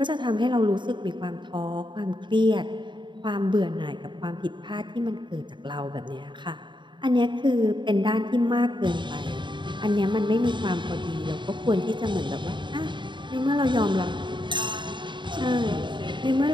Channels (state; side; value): late; left; 0.23 ms